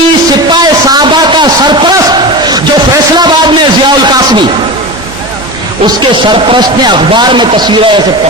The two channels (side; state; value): both; normal; correlation 0.26